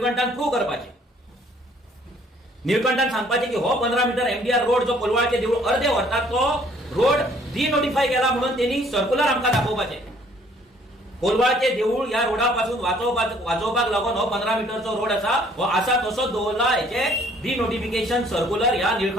प्रूव्ह करपाचें. निळकंठान सांगपाचें की हो 15 मीटर एमडीआर रोड जो कोलवाळचे देवूळ अर्दे व्हरतात तो रोड डिनोटिफाय केला म्हणून त्यांनी सर्क्युलर आमकां दाखोवपाचें. कोलवाळचे देवूळ ह्या रोडा पासून वाचोवपाक लागून हो 15 मीटरचो रोड हो आसा तसोच दवरला. हेचे डिनोटिफिकेशन सर्क्युलर ह्या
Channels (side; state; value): both; normal; correlation 0.60